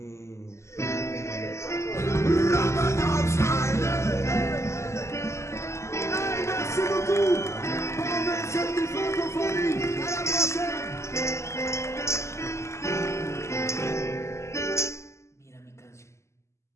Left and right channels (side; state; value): right; late; 0.13 ms